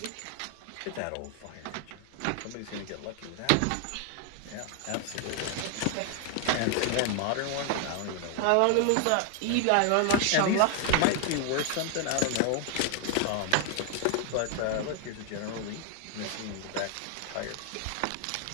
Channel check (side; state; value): both; different; correlation 0.00